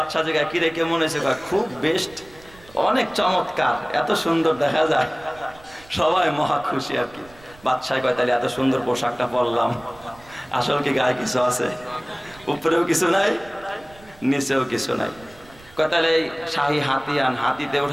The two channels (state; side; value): noise; right; rumble, 25 dB below the sound